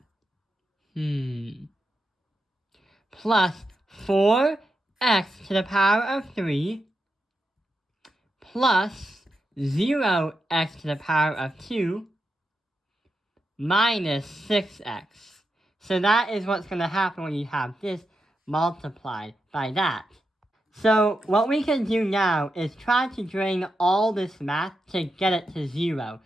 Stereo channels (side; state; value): both; normal; correlation 0.87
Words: plus 4x to the power of 3 plus 0x to the power of 2 minus 6x. So that is what's going to happen when you have this multiplied by that. So what we can do now is try to drain all this math to get it to 0,